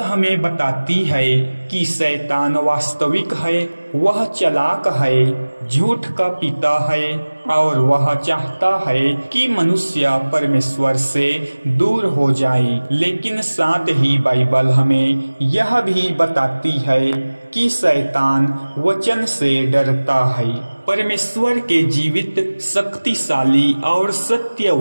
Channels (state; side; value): inverted; both; correlation -1.00